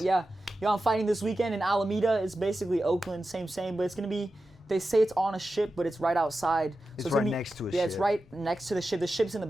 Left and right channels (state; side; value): normal; both; correlation 0.92